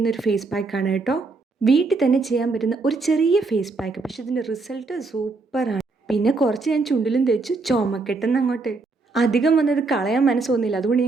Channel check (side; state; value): left; quieter; 3.8 dB